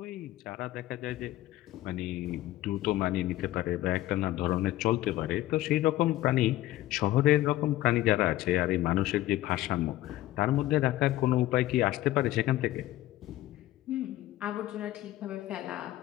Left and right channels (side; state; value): right; quieter; 15.4 dB